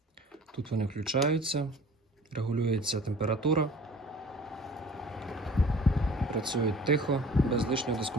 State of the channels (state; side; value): normal; both; correlation 0.47